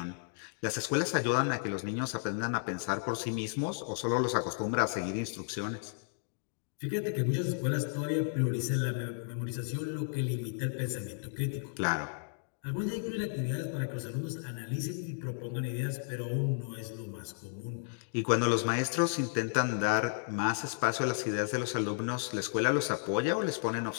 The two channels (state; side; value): silent; right; digital silence